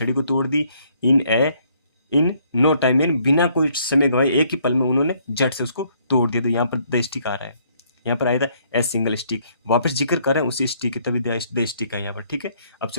को तोड़ दी, इन नो टाइम, इन, बिना कोई समय गवाए, एक ही पल में उन्होंने झट से उसको तोड़ दिया। तो यहाँ पर द स्टिक आ रहा है, यहाँ पर आया था ए सिंगल स्टिक, वापस जिक्र कर रहे हैं उसी स्टिक, तभी द स्टिक है यहाँ पर, ठीक है। अब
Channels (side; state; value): both; inverted; correlation -0.67